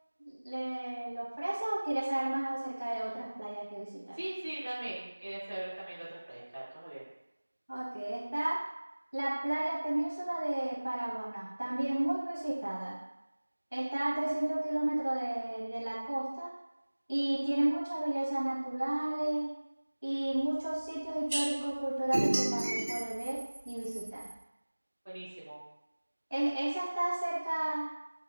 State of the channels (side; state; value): both; inverted; correlation -1.00